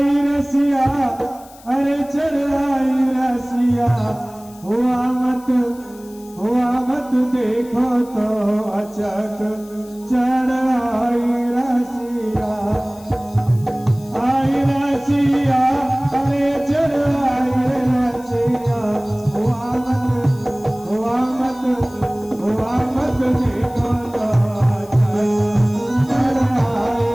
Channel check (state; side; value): noise; left; hiss, 24 dB below the sound